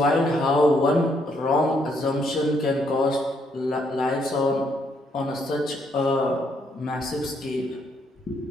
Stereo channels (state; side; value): normal; both; correlation 0.73